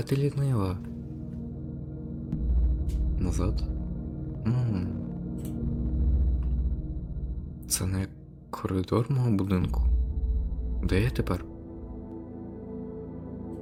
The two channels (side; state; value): both; identical; correlation 1.00